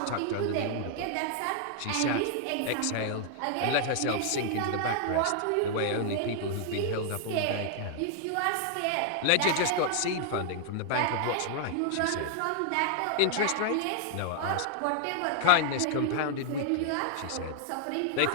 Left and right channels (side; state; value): both; different; correlation -0.01